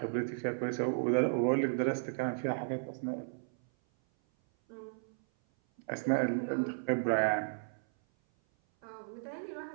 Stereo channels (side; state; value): left; silent; 55 dB below the other